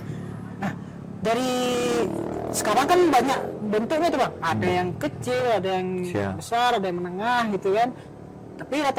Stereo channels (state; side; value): identical; both; correlation 1.00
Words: Nah, dari sekarang kan banyak bentuknya tuh bang. Ada yang kecil, ada yang besar, ada yang menengah gitu kan. Tapi